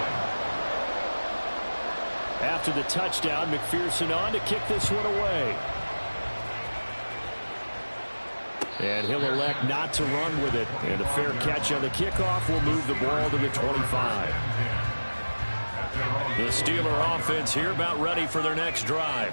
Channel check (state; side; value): inverted; both; correlation -1.00